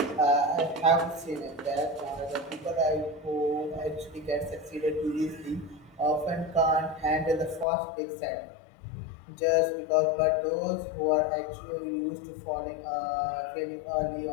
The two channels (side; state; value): right; drops out; at 7.7 s